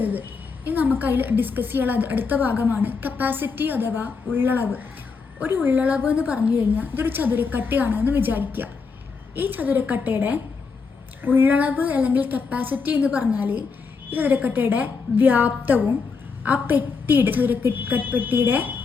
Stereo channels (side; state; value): right; quieter; 5.0 dB